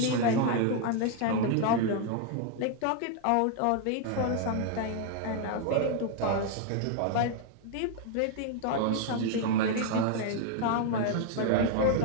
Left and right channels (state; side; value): different; both; correlation 0.00